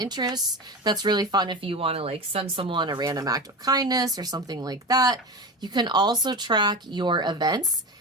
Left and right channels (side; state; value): both; normal; correlation 0.26